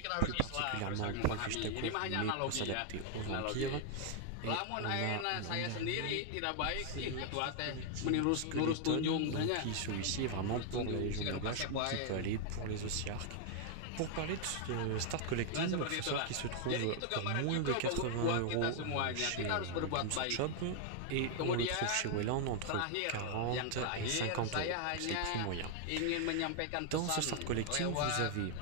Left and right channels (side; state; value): both; different; correlation 0.00